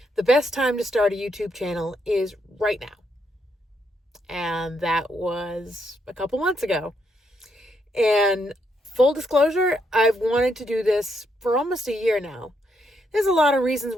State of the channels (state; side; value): normal; both; correlation 0.77